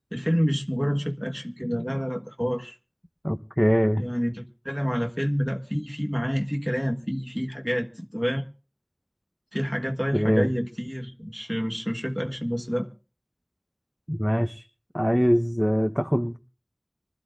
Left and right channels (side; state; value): both; identical; correlation 1.00